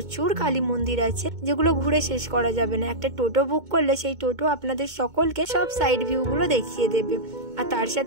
কালী মন্দির আছে, যেগুলো ঘুরে শেষ করা যাবে না। একটা টোটো বুক করলে সেই টোটো আপনাদের সকলকে সব সাইড ভিউ গুলো দেখিয়ে দেবে। আর তার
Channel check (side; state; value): left; late; 2.2 ms